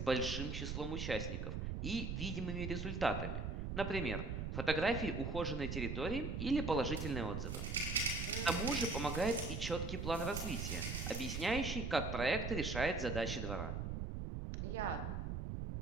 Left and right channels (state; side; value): noise; right; rumble, 3 dB below the sound